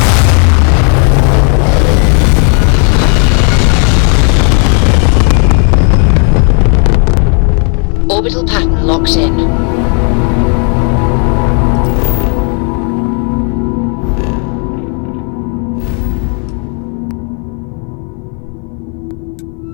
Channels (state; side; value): quieter; right; 39.7 dB